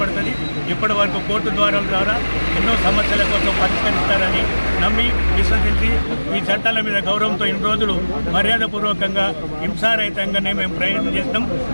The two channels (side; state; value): both; inverted; correlation -1.00